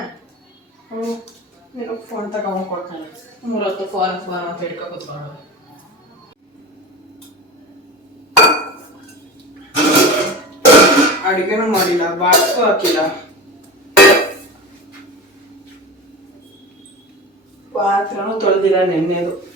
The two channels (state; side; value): normal; both; correlation 0.29